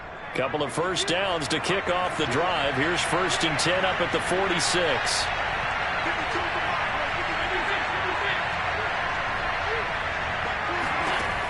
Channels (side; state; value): both; identical; correlation 1.00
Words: Couple of first downs to kick off the drive. Here's 1st and 10 up at the 46.